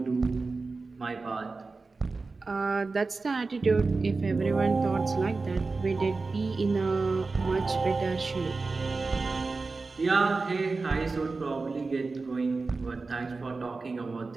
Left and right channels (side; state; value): left; quieter; 3.9 dB